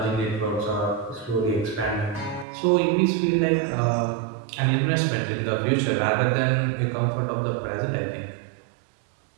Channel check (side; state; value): left; drops out; at 2.5 s